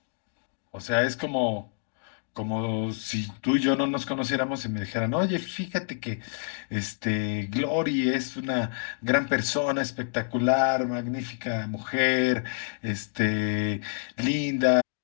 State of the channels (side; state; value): right; silent; 59 dB below the other